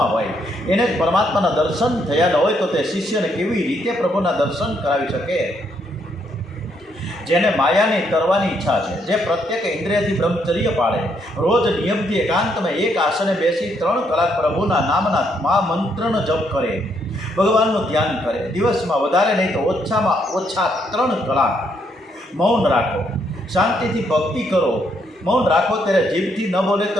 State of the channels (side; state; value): both; normal; correlation 0.74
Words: હોય, એને જ પરમાત્માના દર્શન થયા ન હોય તો તે શિષ્યને કેવી રીતે પ્રભુના દર્શન કરાવી શકે? જેને માયાની તરવાની ઈચ્છા છે, જે પ્રત્યેક ઇન્દ્રિયથી બ્રહ્મચર્ય પાળે, રોજ નિયમથી એકાંતમાં એક આસને બેસી 3 કલાક પ્રભુના નામના મહામંત્રનો જપ કરે, ભગવાનનું ધ્યાન કરે, દિવસમાં વધારે નહીં તો ઓછામાં ઓછા 3 કલાક મૌન રાખો, શાંતિથી ભક્તિ કરો. મૌન રાખો ત્યારે જીભથી ન બોલે